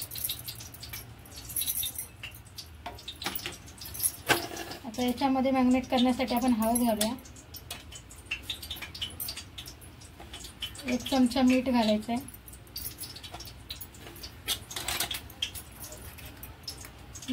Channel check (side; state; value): both; identical; correlation 1.00